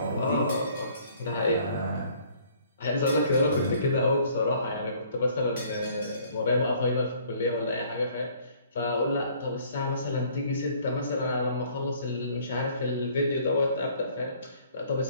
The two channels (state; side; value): inverted; both; correlation -0.58